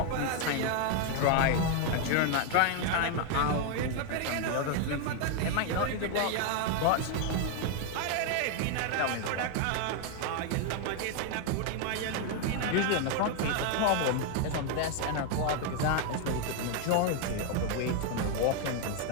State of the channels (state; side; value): different; both; correlation 0.00